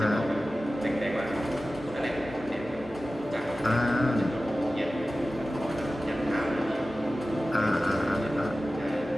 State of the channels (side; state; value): both; normal; correlation 0.95